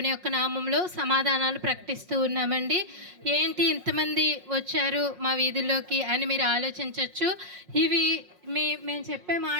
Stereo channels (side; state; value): left; late; 5.5 ms